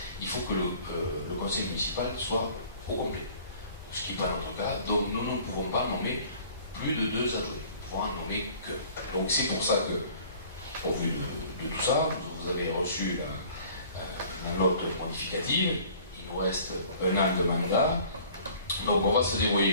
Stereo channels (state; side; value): inverted; both; correlation -0.51